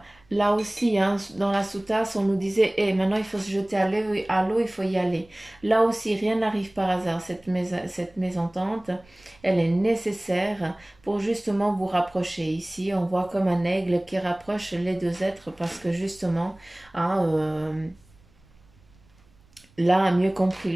Là aussi, hein, dans la sous-tasse, on nous disait, eh, maintenant il faut se jeter à l'eau, il faut y aller. Là aussi, rien n'arrive par hasard. Cette mésentente, elle est nécessaire pour justement vous rapprocher. Ici, on voit comme un aigle qui rapproche les deux êtres parce que justement, hein, l'un a mieux compris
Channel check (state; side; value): noise; right; rumble, 30 dB below the sound